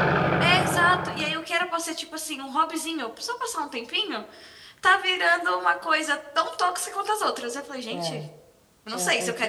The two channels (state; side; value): identical; both; correlation 1.00